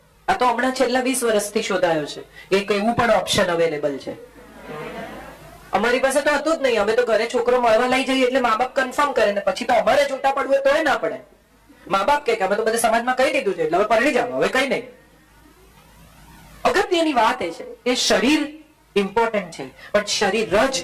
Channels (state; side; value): identical; both; correlation 1.00